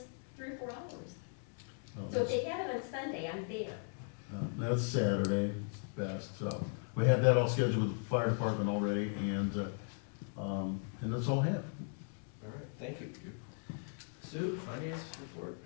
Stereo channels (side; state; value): right; silent; 53 dB below the other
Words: 3 or 4 hours. So if they have it on Sunday, I'm there. That's Saturday, it's the best, so, we had that all scheduled with the fire department already, and that's all I have. All right, thank you. Sue, finance report?